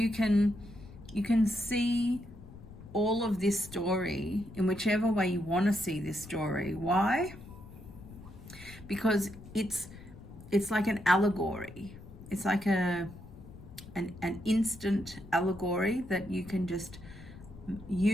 can see all of this story in whichever way you want to see this story. Why? Because it's like an allegory. It's like an instant allegory that you can just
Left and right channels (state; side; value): noise; left; rumble, 17 dB below the sound